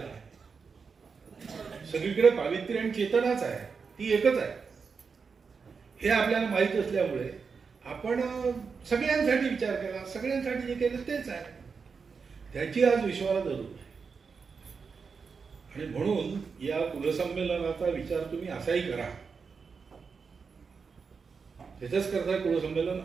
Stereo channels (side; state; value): left; quieter; 5.4 dB